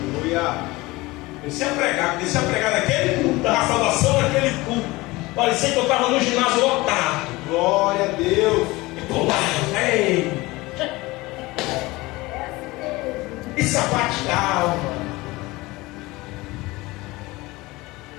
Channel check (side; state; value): right; quieter; 21.2 dB